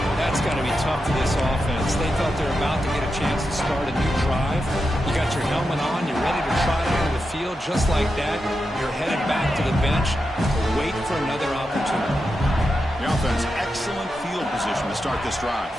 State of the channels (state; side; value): normal; both; correlation 0.88